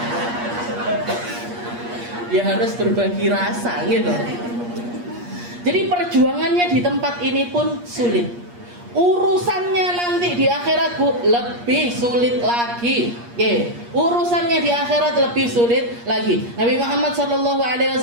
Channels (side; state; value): left; late; 8.5 ms